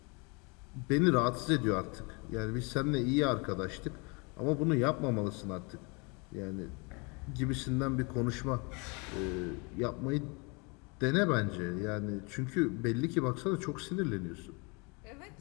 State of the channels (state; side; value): quieter; right; 30.6 dB